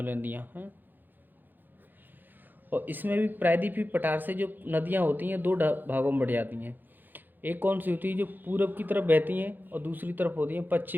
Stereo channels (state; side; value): late; left; 0.088 ms